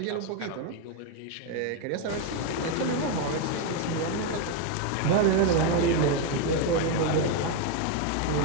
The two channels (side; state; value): both; different; correlation 0.02